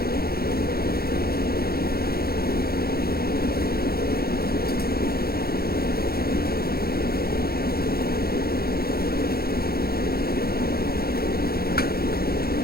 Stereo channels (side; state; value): right; late; 0.44 ms